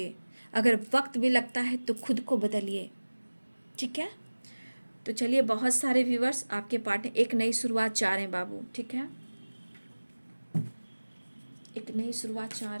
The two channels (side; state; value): both; inverted; correlation -1.00